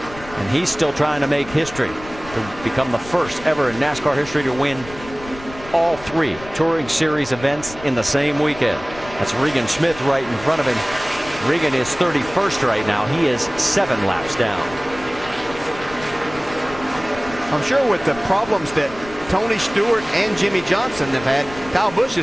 and he's still trying to make history to become the first ever in NASCAR history to win all 3 Touring Series events in the same weekend. That's Regan Smith right in front of him. Regan is 31st right now. He is 7 laps down. I'm sure with the problems that Tony Stewart and Jimmy Johnson have had, Kyle Busch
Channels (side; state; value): left; noise; rumble, 16 dB below the sound